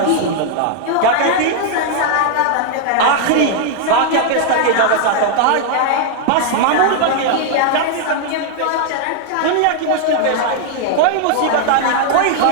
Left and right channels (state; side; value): different; both; correlation 0.00